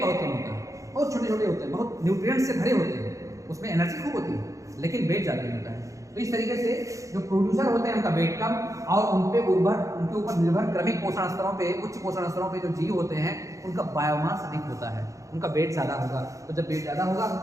बहुत कम होता है, बहुत छोटे छोटे होते हैं, बहुत न्यूट्रिएंट्स से भरे होते हैं, उसमें एनर्जी खूब होती है लेकिन वेट ज़्यादा नहीं होता है। तो इस तरीके से जो प्रोड्यूसर होते हैं उनका वेट कम, और उनके ऊपर निर्भर क्रमिक पोषण स्तरों पे, उच्च पोषण स्तरों पे जो जीव होते हैं उनका बायोमास अधिक होता है, उनका वेट ज़्यादा होगा। तो जब वेट ज़्यादा होगा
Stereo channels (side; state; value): left; late; 0.15 ms